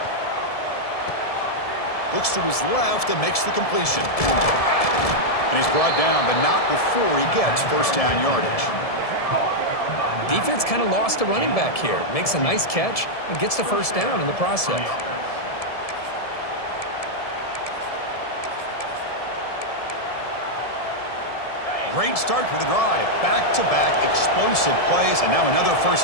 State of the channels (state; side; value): late; right; 1.7 ms